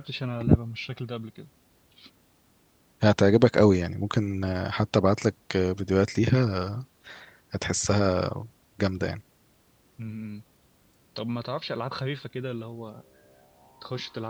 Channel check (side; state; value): both; identical; correlation 1.00